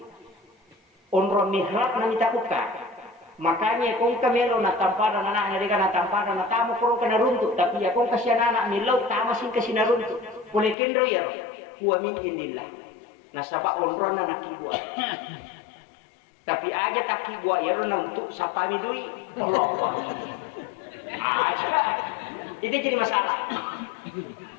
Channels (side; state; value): right; drops out; at 10.8 s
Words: Onro mihrab na mitakuka. Makanya kung kamelo na tampara na nariga na tampara na tamo kurong ka naruntuk. Tapi ya kung kasya na nilaw, tama sin kasi naruntuk. Pulikin ro yaro, huwa min indillah. Nasaba onro na nakibuat. Tapi aja tak kibuat ya na untuk sapami dui. Allah. Itu jadi masalah.